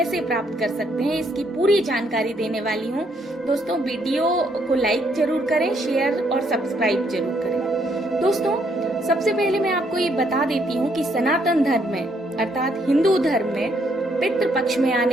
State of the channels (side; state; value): both; normal; correlation 0.71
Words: प्राप्त कर सकते हैं, इसकी पूरी जानकारी देने वाली हूँ। दोस्तों, वीडियो को लाइक जरूर करें, शेयर और सब्सक्राइब जरूर करें। दोस्तों, सबसे पहले मैं आपको ये बता देती हूँ कि सनातन धर्म में अर्थात हिंदू धर्म में पितृ पक्ष में